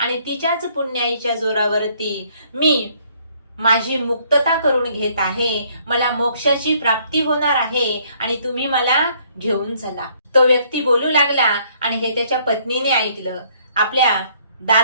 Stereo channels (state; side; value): inverted; both; correlation -0.64